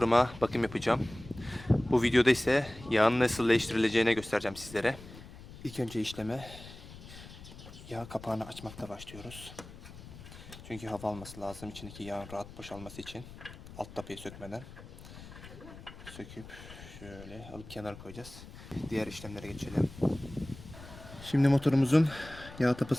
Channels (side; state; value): left; noise; rumble, 16 dB below the sound